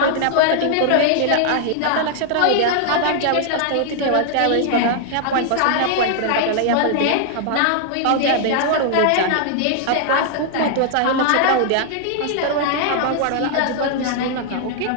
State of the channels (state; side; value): different; both; correlation 0.00